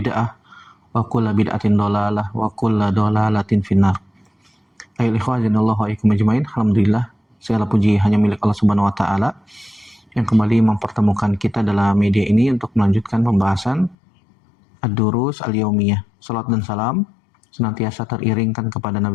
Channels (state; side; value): drops out; right; at 14.0 s